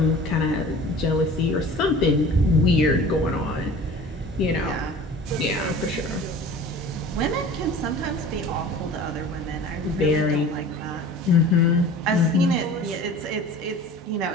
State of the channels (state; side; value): normal; both; correlation 0.42